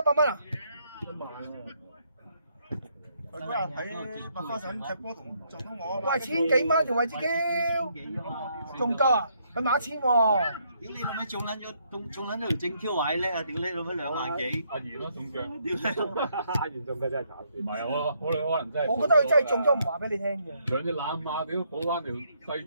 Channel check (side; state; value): both; inverted; correlation -0.72